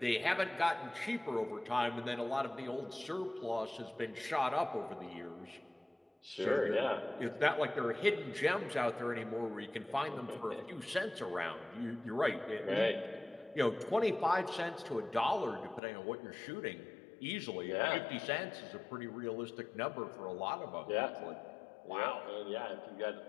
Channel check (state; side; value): drops out; right; at 15.8 s